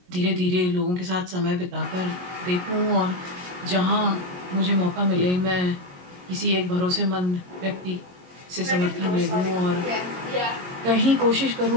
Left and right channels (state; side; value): late; left; 22 ms